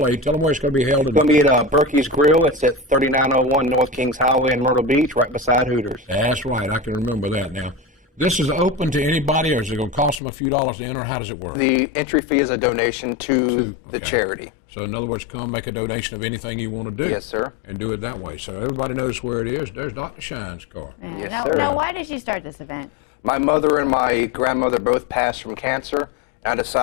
8. Tell them where it's going to be held. It's going to be at Berkey's Grill. It's at 3901 North Kings Highway in Myrtle Beach, right beside Hooters. That's right. I can remember that now. This is open to anybody, or is it going to cost them a few dollars to enter? How does it work? The entry fee is a donation to the charity. So in other words, come make a donation of anything you want to do. Yes, sir. And do it that way. So everybody knows where it is. There's Dr. Shine's car. Yes, now, sir. now, why did you start this event? My mother and my grandmother both passed from cancer. I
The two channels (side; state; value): right; drops out; at 10.2 s